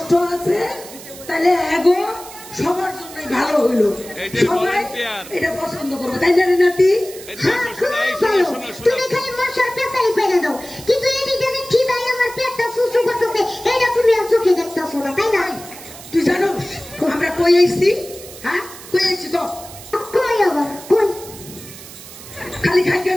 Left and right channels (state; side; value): noise; right; hiss, 16 dB below the sound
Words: আছে তাহলে এগো সবার জন্য ভালো হইলো, সবাই এটা পছন্দ করবো, তাই না নাতি? হ্যাঁ, খুব ভালো। তুমি খালি মশার পেছাই পেরে দাও, কিন্তু এদিকে যে খিদায় আমার পেটটা সুসু করতেছে, এটা তুমি আর চোখে দেখতেছো না, তাই না? তুই জানোস আমরা কই আইছি? হ্যাঁ, কই আইছি তো? কই আবার কই? খালি খাইকে